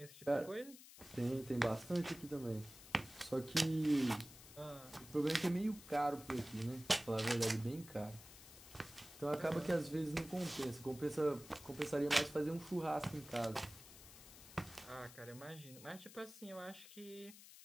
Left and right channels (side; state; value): left; noise; hiss, 17 dB below the sound